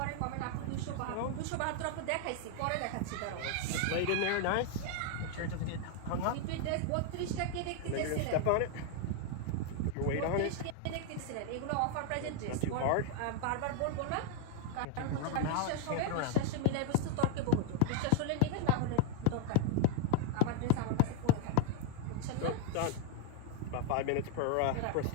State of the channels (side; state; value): both; different; correlation 0.00